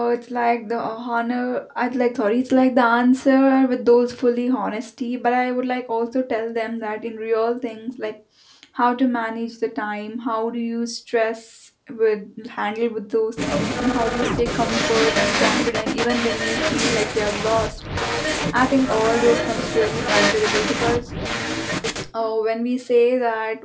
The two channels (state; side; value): identical; both; correlation 1.00